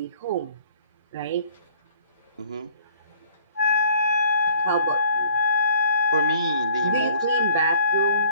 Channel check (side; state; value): both; inverted; correlation -0.55